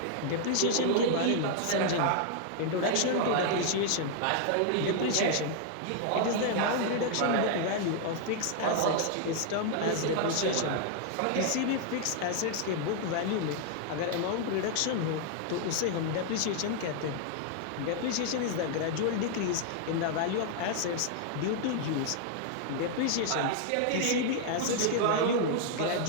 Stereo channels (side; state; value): both; different; correlation 0.00